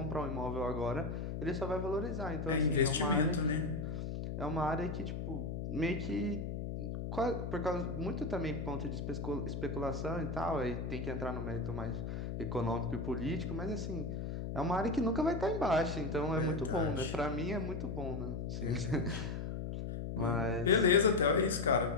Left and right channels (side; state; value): left; noise; hum, 4 dB below the sound